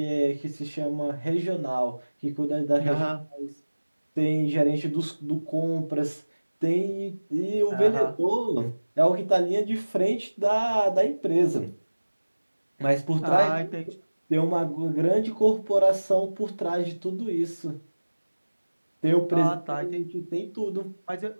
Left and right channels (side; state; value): both; inverted; correlation -1.00